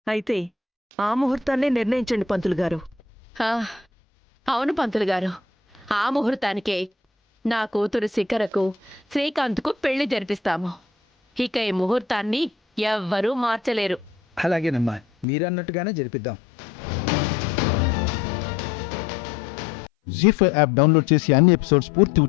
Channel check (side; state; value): right; drops out; at 15.2 s